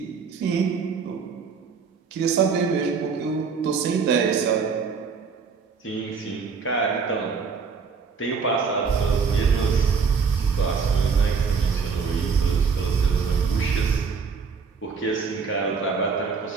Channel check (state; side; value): quieter; left; 5.5 dB